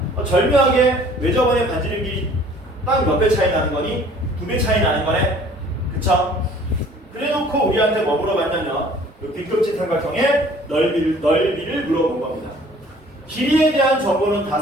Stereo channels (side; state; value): both; normal; correlation 0.53